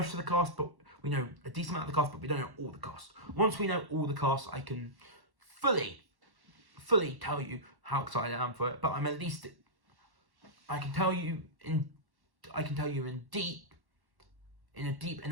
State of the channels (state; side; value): late; left; 1.1 ms